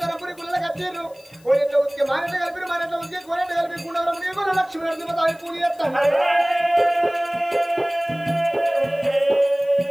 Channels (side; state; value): left; noise; hiss, 29 dB below the sound